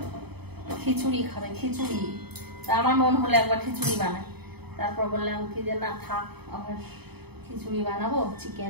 খিচুড়ি খাবে, খিচুড়ি। তা আমার মন হলো একবার খিচুড়ি বানাই, তারপর বললাম কি যে না থাক, আবার খিচুড়ি বানাবো,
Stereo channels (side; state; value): left; late; 0.97 ms